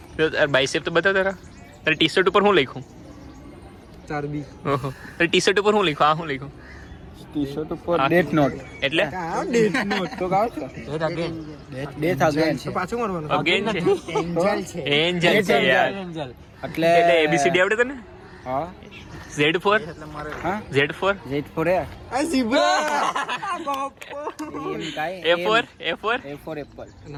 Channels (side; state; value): both; identical; correlation 1.00